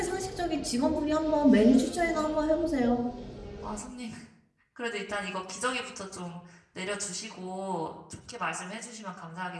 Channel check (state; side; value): identical; both; correlation 1.00